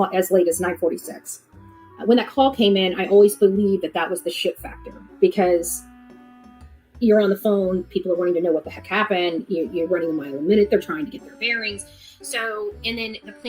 as 9:46. When that call came in, I always believed that was the shit factor, because you're on the phone, people are wanting to know what the heck happened. You're running a mile a minute. They're trying to get their bearings. So, and then the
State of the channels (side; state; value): both; identical; correlation 1.00